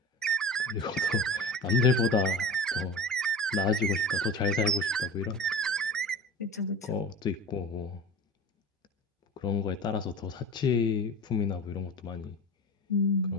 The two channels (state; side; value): normal; both; correlation 0.34